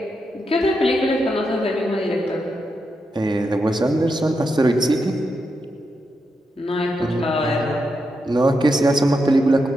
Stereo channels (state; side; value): normal; both; correlation 0.85